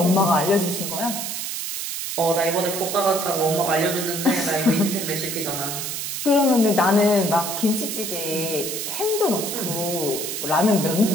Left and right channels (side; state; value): right; noise; hiss, 4 dB below the sound